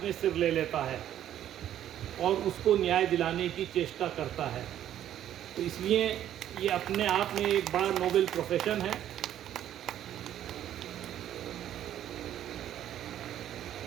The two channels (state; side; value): quieter; left; 11.3 dB